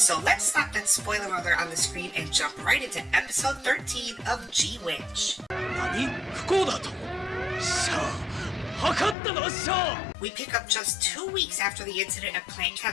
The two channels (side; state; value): right; drops out; at 9.2 s